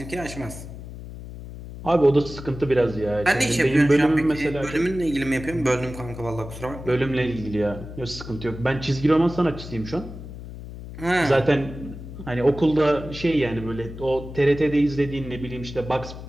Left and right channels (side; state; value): left; noise; hum, 12 dB below the sound